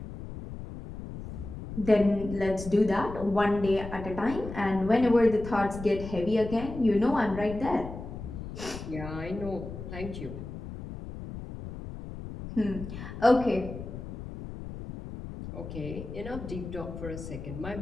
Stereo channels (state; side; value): noise; left; rumble, 10 dB below the sound